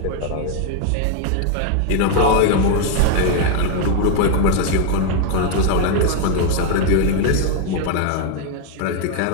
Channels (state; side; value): different; both; correlation 0.00